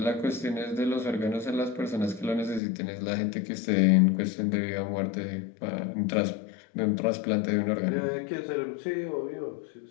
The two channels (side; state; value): right; drops out; at 2.6 s